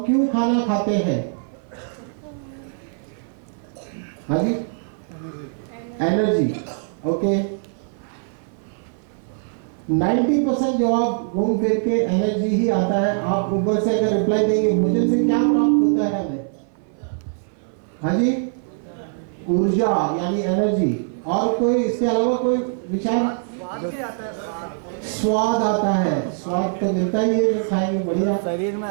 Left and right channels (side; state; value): left; silent; 58 dB below the other